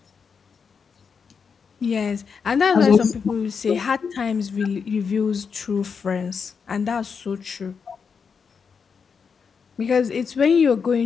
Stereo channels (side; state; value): right; quieter; 6.0 dB